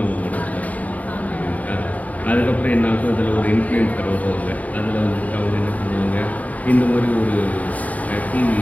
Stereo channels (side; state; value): right; late; 0.072 ms